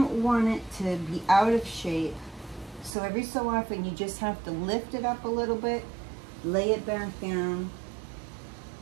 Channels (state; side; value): drops out; left; at 3.0 s